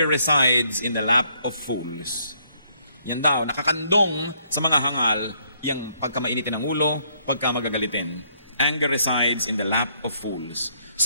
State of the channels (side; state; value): both; inverted; correlation -0.70